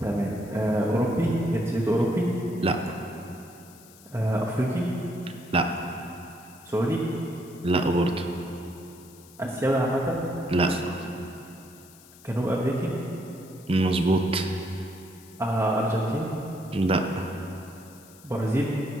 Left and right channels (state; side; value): noise; left; hiss, 23 dB below the sound